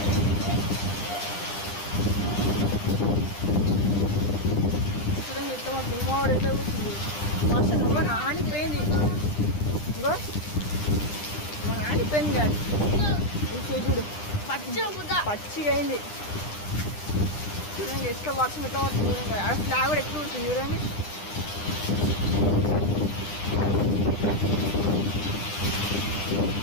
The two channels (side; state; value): right; late; 9.9 ms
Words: భూమావాడు ఎట్లా కూర్చుంది. అసలు ఇంకో నానిపోయింది. ఇంకో నానిపోయింది కాదు. చూడు పచ్చిగా అయింది. చూడండి ఎట్లా వర్షం ఎట్లా పడుతుంది చూడండి. ఆ ఫ్లాగ్ కూడా ఎట్లా కూర్చుంది చూడండి.